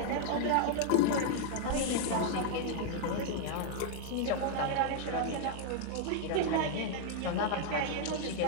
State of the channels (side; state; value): both; different; correlation 0.00